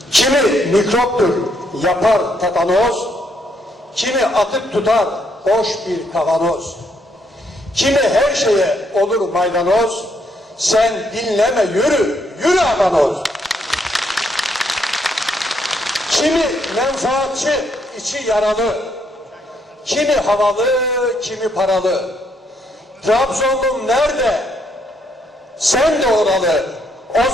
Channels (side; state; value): both; normal; correlation 0.73